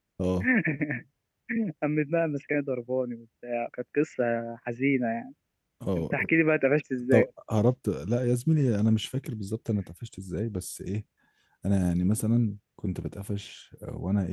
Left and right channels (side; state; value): both; identical; correlation 1.00